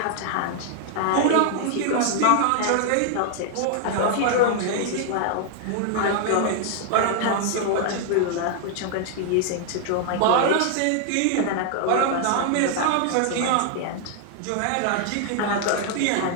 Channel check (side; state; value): both; different; correlation 0.00